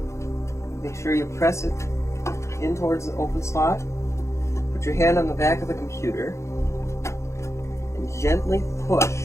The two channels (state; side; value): late; right; 0.14 ms